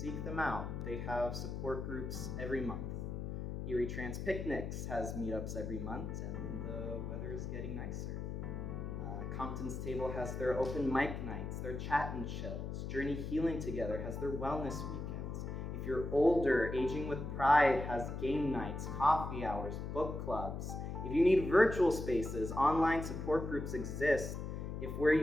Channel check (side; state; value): left; noise; hum, 5 dB below the sound